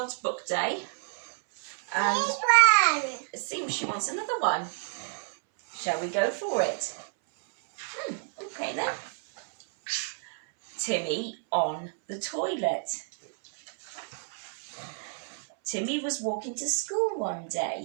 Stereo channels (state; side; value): silent; left; 58 dB below the other